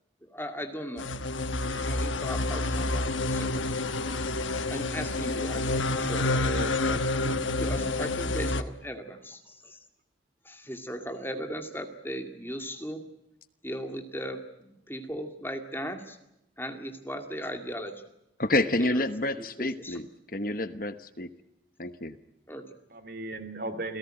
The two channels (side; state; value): both; normal; correlation 0.37